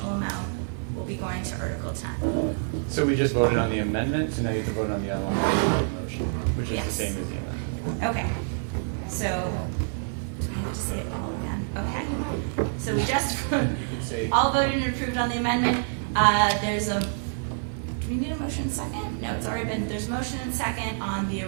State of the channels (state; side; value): silent; left; digital silence